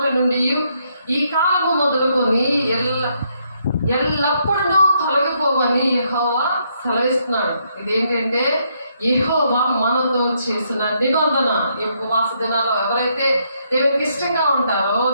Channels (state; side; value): inverted; both; correlation -0.74